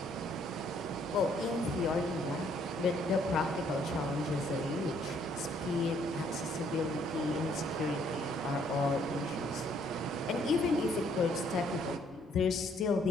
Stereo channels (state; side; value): noise; left; rumble, 28 dB below the sound